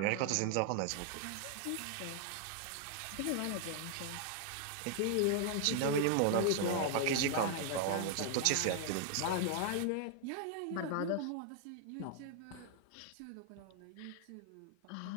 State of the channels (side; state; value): both; different; correlation 0.00